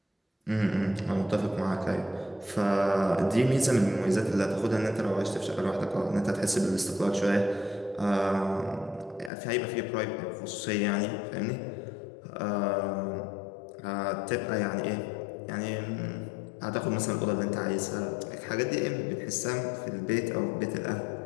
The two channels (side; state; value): right; drops out; at 9.3 s